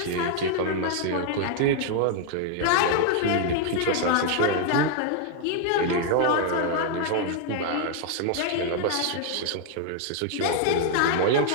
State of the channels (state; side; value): different; both; correlation 0.00